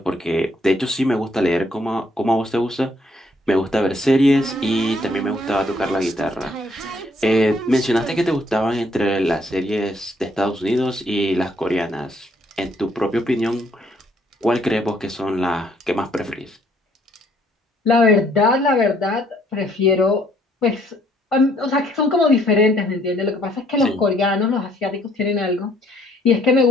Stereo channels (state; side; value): normal; both; correlation 0.66